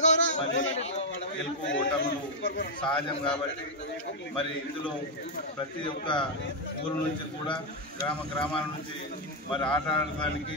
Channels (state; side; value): normal; both; correlation -0.01